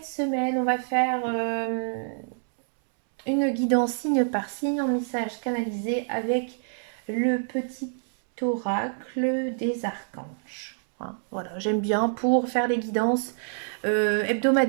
semaine, on va faire une guidance signe par signe en message canalisé avec le petit oracle des archanges. Hein, voilà, j'aime bien pour faire les guidances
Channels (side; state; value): left; silent; 61 dB below the other